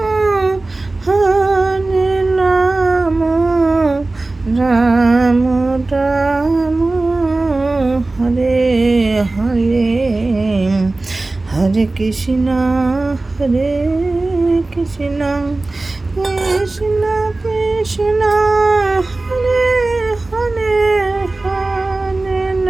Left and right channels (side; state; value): left; quieter; 3.1 dB